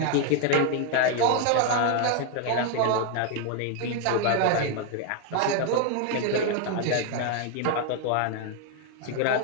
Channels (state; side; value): different; both; correlation 0.01